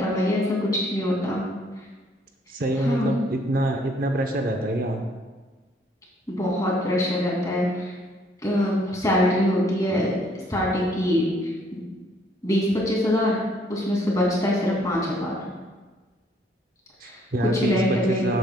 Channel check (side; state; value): both; normal; correlation 0.65